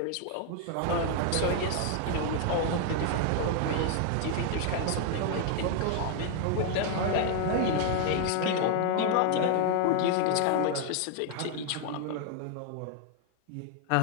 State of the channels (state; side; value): different; both; correlation 0.00